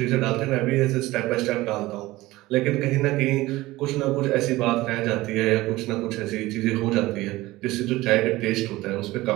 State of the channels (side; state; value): left; quieter; 18.6 dB